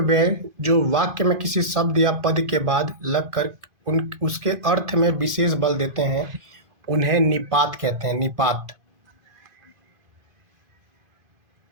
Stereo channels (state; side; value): late; left; 2.5 ms